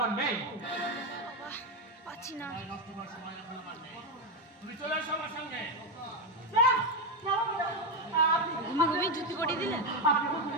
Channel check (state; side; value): normal; both; correlation 0.08